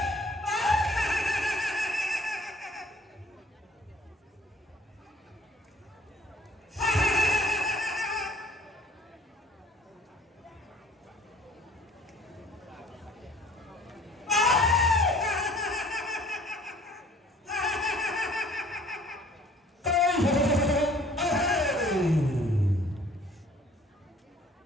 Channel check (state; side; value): normal; both; correlation 0.54